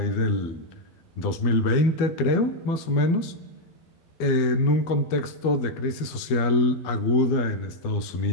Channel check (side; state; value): right; late; 12 ms